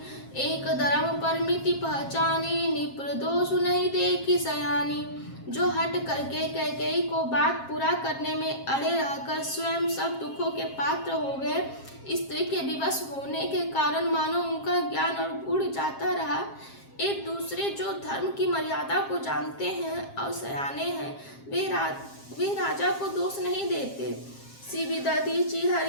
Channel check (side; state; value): right; late; 7.5 ms